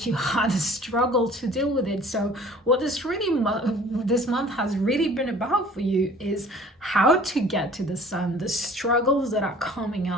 you had a struggle to deal with it. So what this month has really been about for you is how to get to the Sun, the struggles that are coming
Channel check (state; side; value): normal; both; correlation 0.50